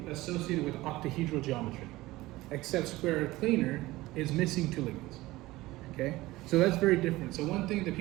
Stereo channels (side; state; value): left; quieter; 18.6 dB